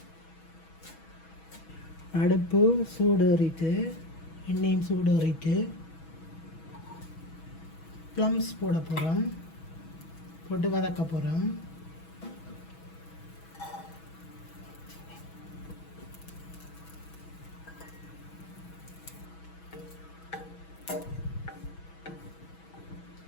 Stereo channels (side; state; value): right; late; 6.2 ms